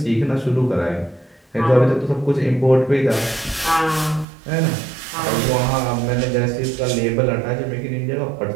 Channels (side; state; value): left; drops out; at 4.2 s